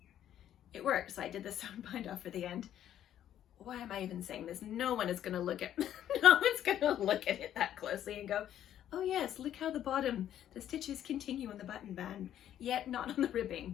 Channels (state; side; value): quieter; right; 11.0 dB